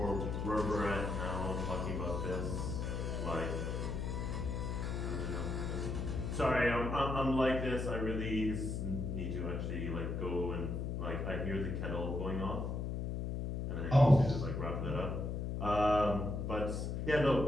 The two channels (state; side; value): noise; left; hum, 2 dB below the sound